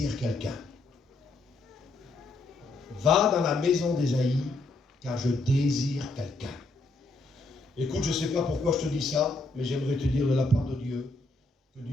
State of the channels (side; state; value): right; quieter; 3.2 dB